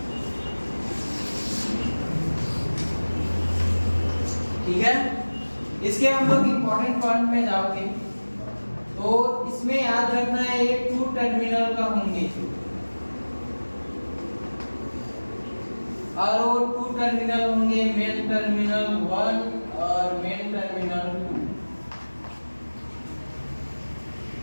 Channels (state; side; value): inverted; both; correlation -1.00